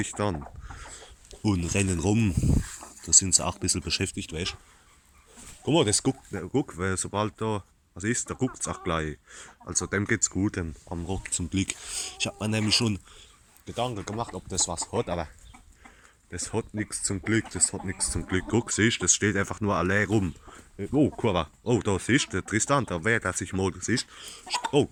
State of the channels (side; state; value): both; identical; correlation 1.00